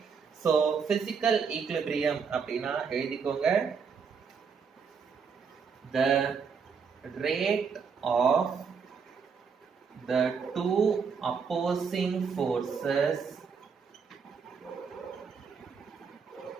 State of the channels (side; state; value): left; quieter; 6.0 dB